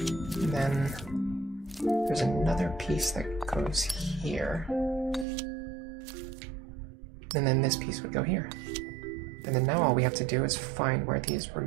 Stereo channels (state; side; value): drops out; left; at 5.2 s